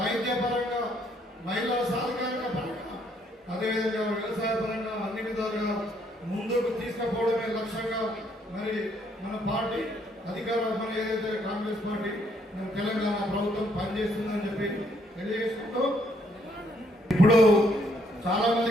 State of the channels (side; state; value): both; normal; correlation 0.69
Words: పరంగా, మహిళా సాధికారిక పరంగా, అదేవిధంగా వ్యవసాయ పరంగా అన్ని విధాలుగా ముందుకు తీసుకుపోవడమే లక్ష్యంగా మరి మన పార్టీ మన ఏదైతే కాంగ్రెస్ పార్టీ తెలంగాణ ప్రభుత్వం పనిచేస్తుందని చెప్పి తెలియజేసుకుంటూ, ఇప్పుడు చాలా మంది